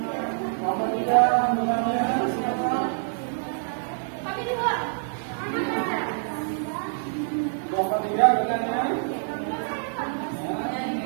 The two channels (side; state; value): left; silent; digital silence